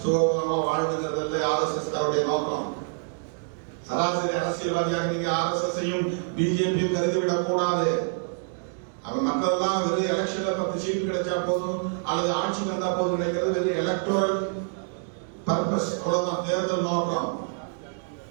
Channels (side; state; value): left; silent; 60 dB below the other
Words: சுகபமாக வாழ்ந்துங்கிறதல்ல RSS காருடைய நோக்கம். சராசரி அரசியல்வாதியாக நீங்க RSS-ஐயும் பிஜேபி கருதிவிடக் கூடாது. அவன் மற்றதெல்லாம் வெறும் எலெக்ஷன்ல 10 சீட்டு கிடைச்சா போதும் அல்லது ஆட்சி வந்தா போதும் நினைக்கிறது வெறும் எலக்டோரல் பர்பஸ், அவ்வளவுதான், தேர்தல் நோக்கம்.